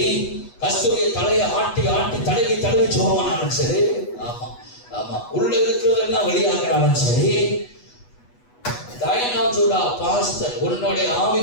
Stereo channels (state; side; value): late; right; 8.2 ms